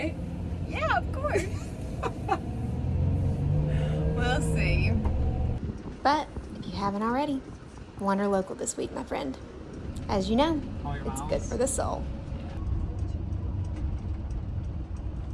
Yeah, of course. We'll see. But if you haven't already, Wanderlocal this week, my friend. As you know, All your it's miles. good for the soul.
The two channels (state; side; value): identical; both; correlation 1.00